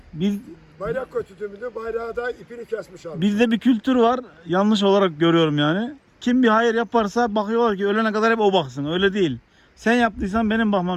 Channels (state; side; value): identical; both; correlation 1.00